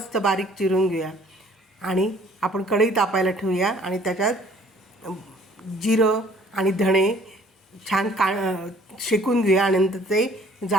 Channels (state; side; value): normal; both; correlation 0.57